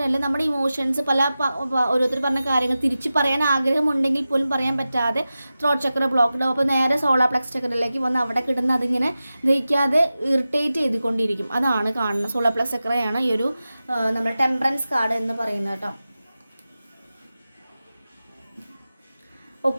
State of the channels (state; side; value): inverted; both; correlation -0.94